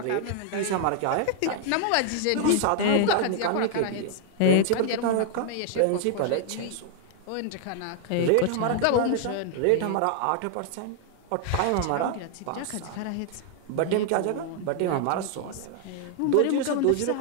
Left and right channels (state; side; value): different; both; correlation 0.00